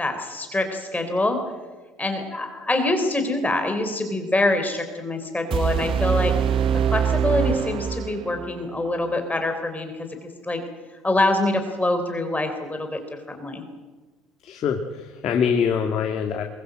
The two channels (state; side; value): normal; both; correlation 0.71